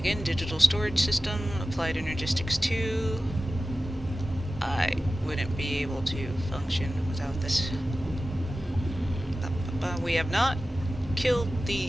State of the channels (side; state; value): both; normal; correlation 0.95